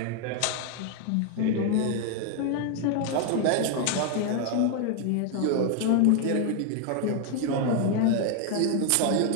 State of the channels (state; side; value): different; both; correlation 0.01